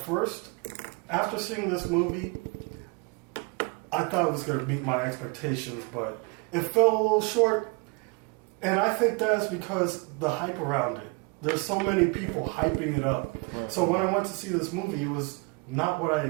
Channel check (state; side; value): quieter; left; 30.6 dB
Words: after seeing this movie, I thought it was going to meet my expectations, but it fell a little short. And I think that's because the hype around it. There's so many people hyping it up. Right. So when I went to see this movie, it was not what I